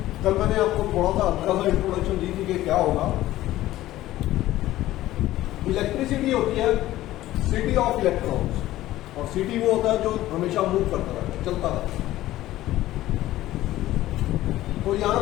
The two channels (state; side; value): quieter; right; 15.2 dB